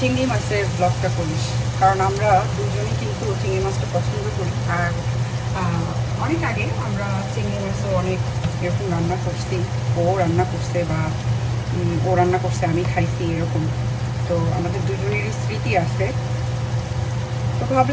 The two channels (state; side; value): identical; both; correlation 1.00